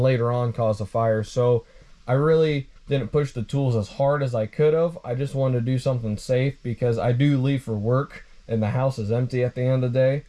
later on cause a fire. So I really didn't push the tools as hard as I could have. I just wanted to do something safe because I do leave for work and the house is empty at the end of the day.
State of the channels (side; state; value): both; identical; correlation 1.00